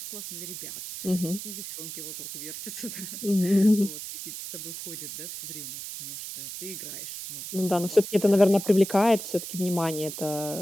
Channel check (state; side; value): noise; right; hiss, 9 dB below the sound